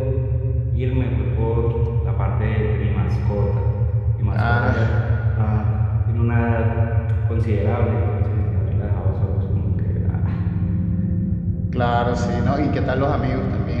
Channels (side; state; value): both; identical; correlation 1.00